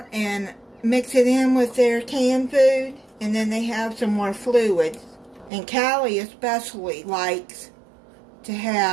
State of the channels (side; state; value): left; drops out; at 5.5 s